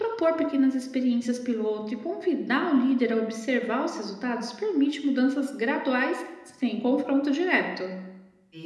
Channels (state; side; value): identical; both; correlation 1.00